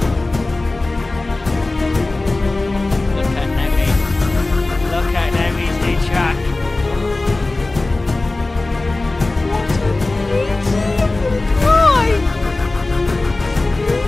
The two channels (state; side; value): quieter; right; 3.1 dB